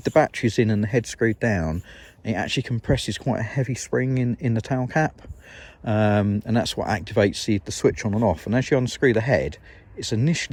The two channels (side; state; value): both; identical; correlation 1.00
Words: the batteries in and the head screwed down, it actually compresses quite a heavy spring in the tail cap, and that's what activates the switch on and off. And as you unscrew the head, it's